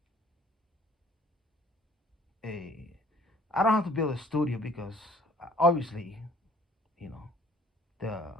I don't have to build a studio because obviously, you know,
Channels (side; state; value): both; normal; correlation 0.55